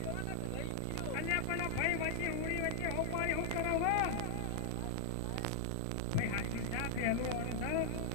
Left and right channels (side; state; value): both; different; correlation -0.01